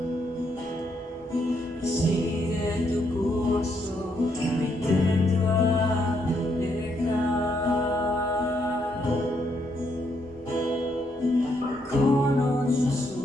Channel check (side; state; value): both; normal; correlation 0.75